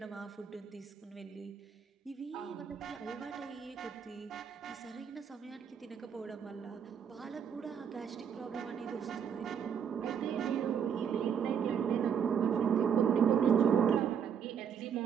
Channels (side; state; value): left; quieter; 7.6 dB